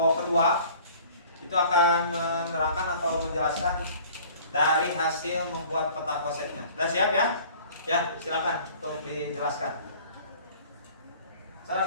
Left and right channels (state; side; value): inverted; both; correlation -0.49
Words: kedua itu akan menerangkan atau menjelaskan dari hasil membuat peta konsepnya. Sudah siap ya? Ya, silakan untuk dijelaskan. Saya